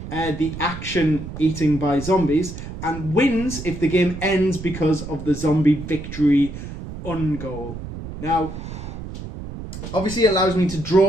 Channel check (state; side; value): noise; right; rumble, 10 dB below the sound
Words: the action eating by zombies, and wins if the game ends because of the zombie victory ungoal. Now, obviously it allows me to